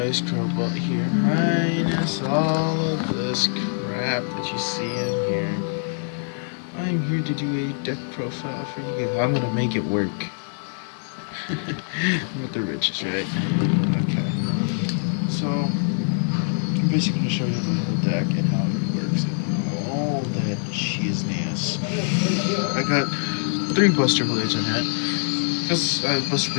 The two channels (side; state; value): right; silent; digital silence